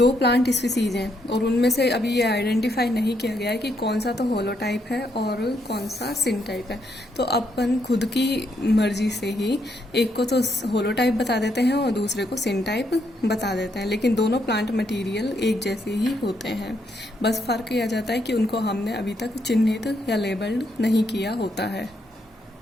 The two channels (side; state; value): both; normal; correlation 0.76